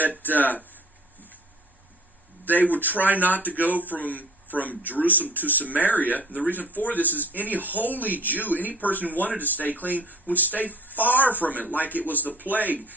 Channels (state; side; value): normal; both; correlation 0.47